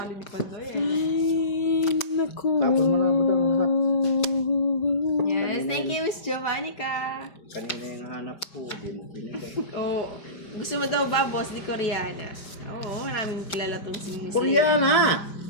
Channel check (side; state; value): right; late; 5.1 ms